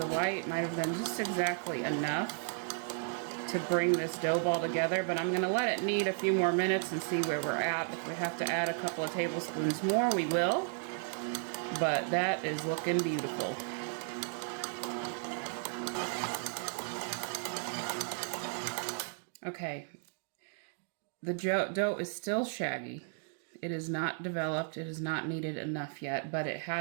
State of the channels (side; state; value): left; silent; 55 dB below the other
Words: white might have been just exactly enough to bring this dough ball together, but I'm going to let it knead a few more minutes and see where we're at. If we have to add a couple of tablespoons more, we will, but that is looking beautiful. Okay, the dough is still shaggy. It is not developed, it is not kneaded enough yet, but it